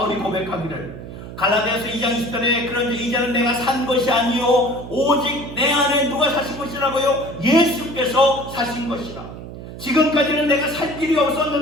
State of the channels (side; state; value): right; noise; hum, 12 dB below the sound